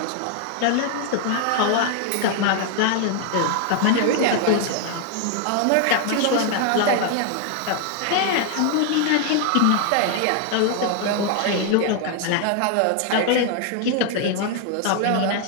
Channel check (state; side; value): different; both; correlation 0.00